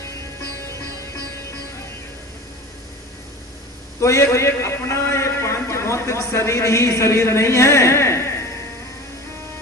तो ये अपना ये पांच भौतिक शरीर ही शरीर नहीं है,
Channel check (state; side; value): normal; both; correlation 0.36